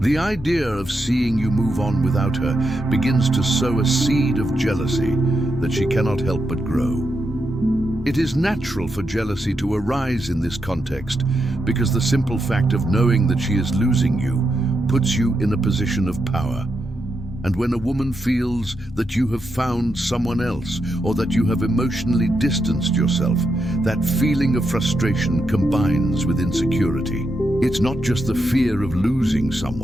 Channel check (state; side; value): normal; both; correlation 0.84